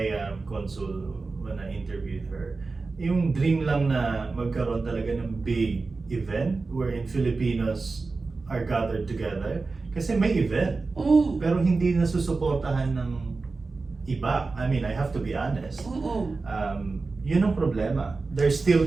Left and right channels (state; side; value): quieter; left; 3.9 dB